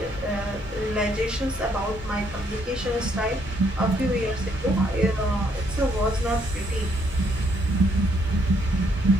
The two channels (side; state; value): both; normal; correlation 0.70